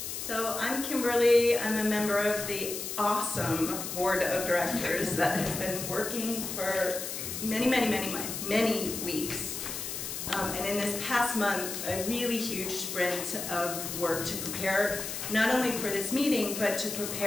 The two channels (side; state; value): left; noise; hiss, 5 dB below the sound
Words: So I'm Kimberly. I'm a member of the awesome board of directors that has been working for many weeks. And in this past month, a really huge sprint of work to prepare not only for this meeting, but to